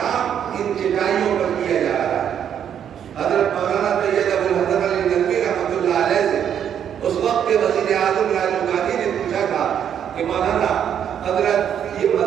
ان چٹائیوں پر کیا جا رہا ہے. حضرت مولانا سید ابوالحسن علی ندوی رحمۃ اللہ علیہ سے اس وقت کے وزیر اعظم راجیو گاندھی نے پوچھا تھا کہ مولانا حضرت یہ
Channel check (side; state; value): left; quieter; 9.0 dB